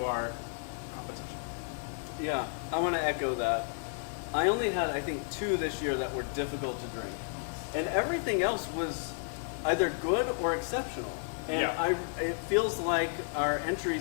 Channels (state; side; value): silent; right; 56 dB below the other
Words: our competition. Yeah, I want to echo that. I only had, I think, 2 this year that were difficult to drink. And everything else was either good or exceptional. And Yeah. it feels like our